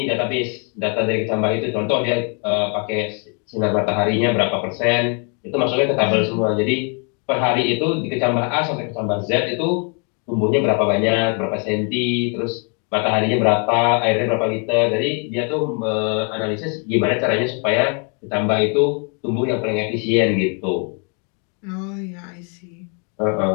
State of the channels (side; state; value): right; quieter; 37.9 dB